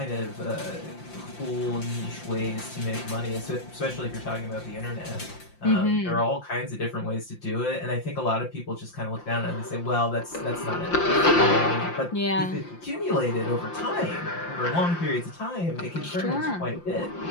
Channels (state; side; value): late; right; 5.8 ms